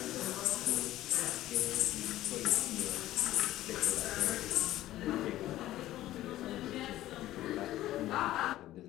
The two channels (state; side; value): quieter; right; 14.7 dB